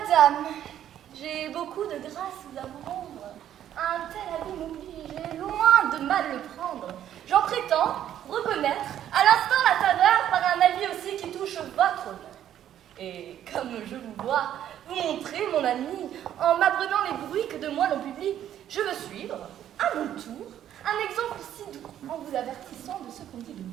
j'ai beaucoup de grâce à vous rendre. Un tel avis m'oblige, loin de mal le prendre. J'en prétends reconnaître à l'instant la faveur par un avis aussi qui touche votre honneur. Et comme je vous vois vous montrer, mon ami, en m'apprenant les bruits que de moi l'on publie, je veux suivre, à mon tour, un exemple si doux, en vous avertissant de ce qu'on dit de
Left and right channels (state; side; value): quieter; left; 10.9 dB